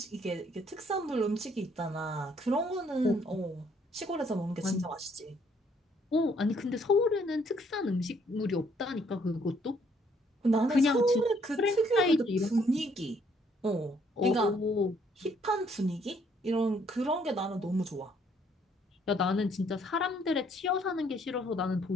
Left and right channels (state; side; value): normal; both; correlation 0.66